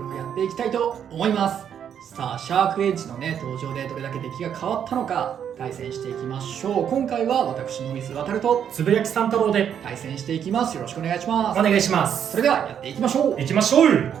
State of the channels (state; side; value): quieter; left; 8.7 dB